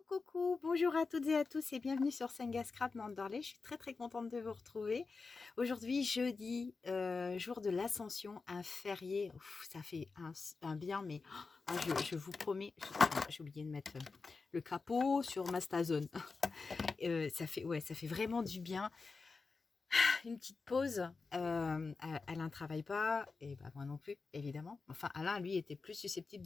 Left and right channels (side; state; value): right; quieter; 4.3 dB